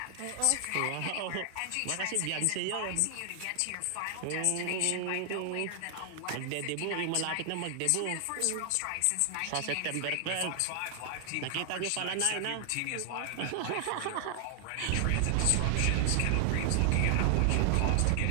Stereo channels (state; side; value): different; both; correlation 0.00